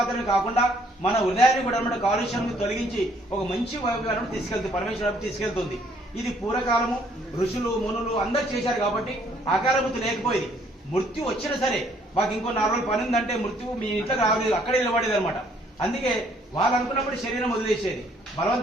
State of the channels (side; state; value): both; normal; correlation 0.64